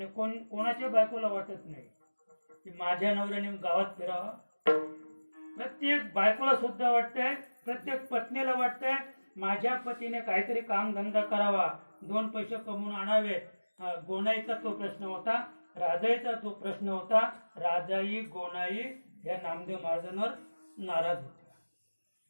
कोणाच्या बायकोला वाटत नाही की माझ्या नवऱ्याने गावात फिरावा. प्रत्येक बायकोला सुद्धा वाटतंय, प्रत्येक पत्नीला वाटतंय माझ्या पतीने काहीतरी काम धंदा करावा, 2 पैसे कमवून आणावेत. गोनाईचा तो प्रश्न होता, राजाईचा तो प्रश्न होता. राजाई गोनाई या नामदेव महाराजांवर नाराज होत्या.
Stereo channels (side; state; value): both; inverted; correlation -1.00